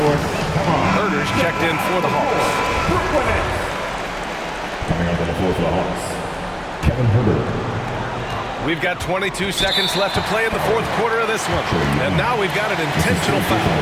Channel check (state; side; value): identical; both; correlation 1.00